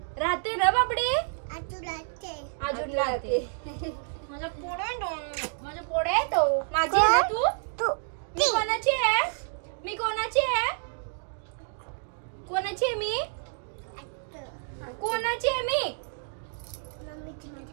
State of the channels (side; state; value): left; silent; digital silence